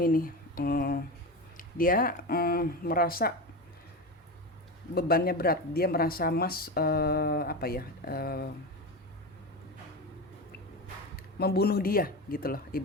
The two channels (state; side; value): normal; both; correlation 0.21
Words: ini. Dia merasa bebannya berat. Dia merasa Mas membunuh dia gitu loh,